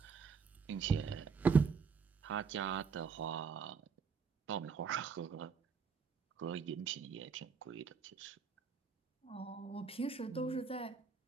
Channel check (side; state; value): left; quieter; 5.6 dB